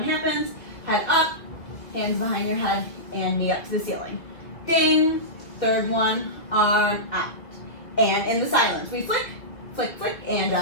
happens, head up, hands behind your head, and knee up to the ceiling. Ding, third one, arm out. And in the silence, we flick, flick, flick, and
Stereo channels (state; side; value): late; right; 2.1 ms